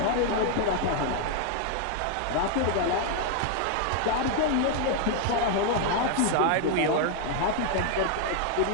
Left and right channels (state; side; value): different; both; correlation 0.00